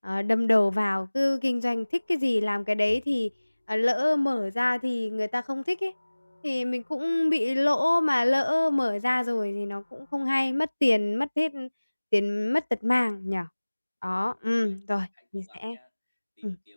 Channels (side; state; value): both; inverted; correlation -1.00